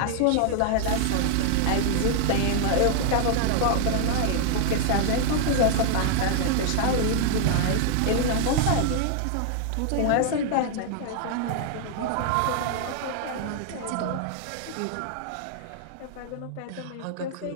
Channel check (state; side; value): different; both; correlation 0.00